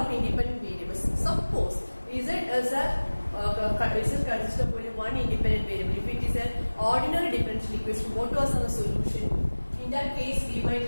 independent variables. Suppose Z is consists of only one independent variable. If it is an ordinary differential equation, what was our solution? In that case, we might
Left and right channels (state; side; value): inverted; both; correlation -1.00